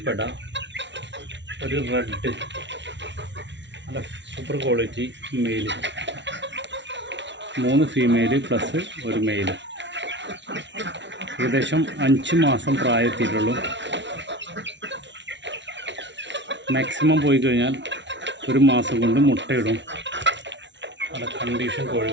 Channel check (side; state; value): left; late; 0.52 ms